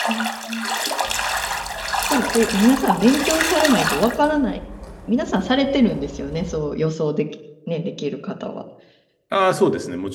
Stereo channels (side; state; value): both; identical; correlation 1.00